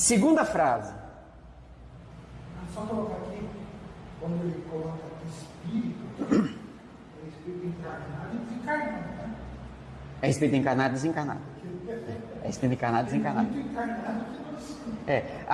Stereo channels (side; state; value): both; identical; correlation 1.00